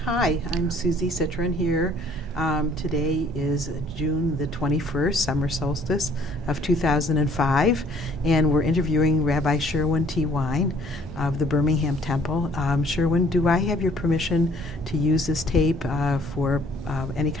Hi, I'm Susie Citron here. Today is June the 21st, summer solstice of 2005, and we're interviewing Rabbi Sherwin Wine of the Birmingham Temple. Sherwin, do I have your permission to use this tape for any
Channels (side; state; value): both; normal; correlation 0.58